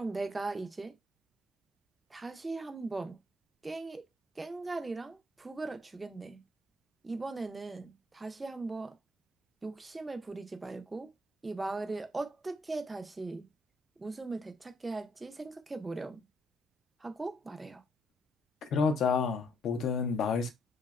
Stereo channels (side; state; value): both; normal; correlation 0.71